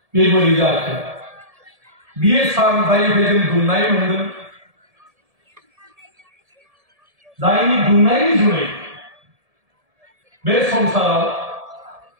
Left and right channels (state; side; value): late; left; 1.7 ms